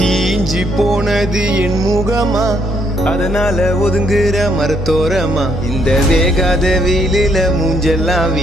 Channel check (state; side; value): normal; both; correlation 0.72